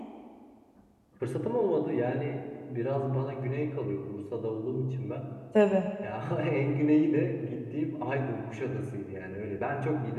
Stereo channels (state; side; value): identical; both; correlation 1.00